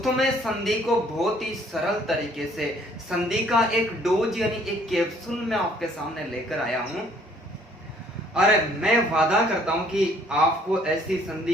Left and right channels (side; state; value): both; normal; correlation 0.61